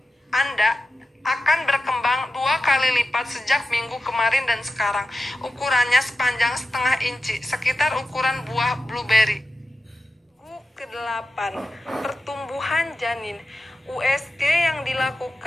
Anda akan berkembang 2 kali lipat sejak minggu kemarin dan sekarang. Ukurannya sepanjang setengah inci, sekitar ukuran buah blueberry. Minggu ke-8, pertumbuhan janin. USG yang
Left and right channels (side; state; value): both; normal; correlation 0.92